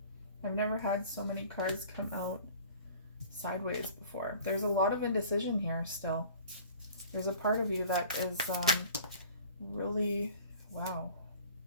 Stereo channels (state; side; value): inverted; both; correlation -0.46